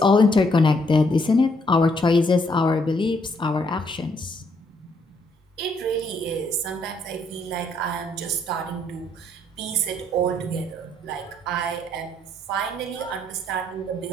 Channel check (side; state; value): both; normal; correlation 0.70